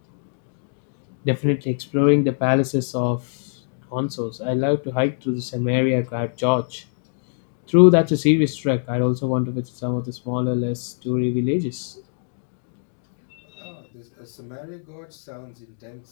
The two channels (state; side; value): silent; right; digital silence